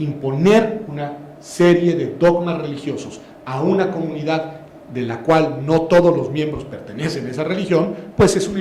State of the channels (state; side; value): identical; both; correlation 1.00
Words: una serie de dogmas religiosos a una comunidad de la cual no todos los miembros pertenecen a esa religión, pues es una